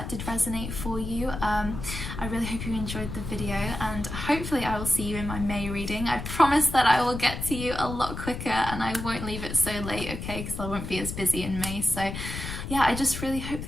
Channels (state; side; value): noise; left; rumble, 7 dB below the sound